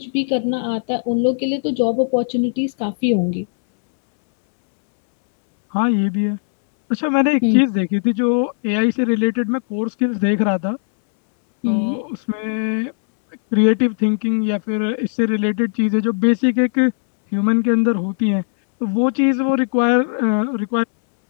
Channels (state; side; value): silent; right; 67 dB below the other